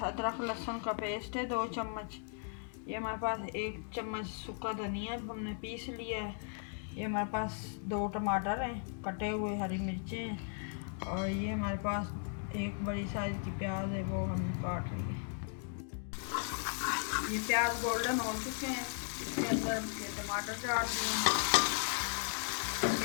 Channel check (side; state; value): right; silent; 53 dB below the other